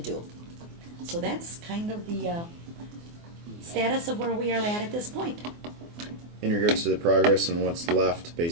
do. So that's kind of the status of where we are at this point. In regards to the progress and what's left,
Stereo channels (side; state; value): left; late; 24 ms